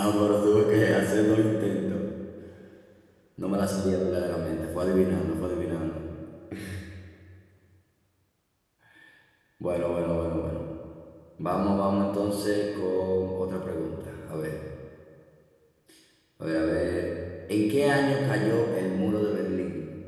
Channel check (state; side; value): identical; both; correlation 1.00